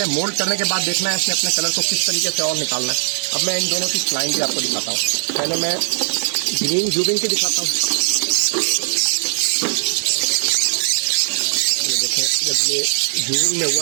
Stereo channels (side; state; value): left; silent; digital silence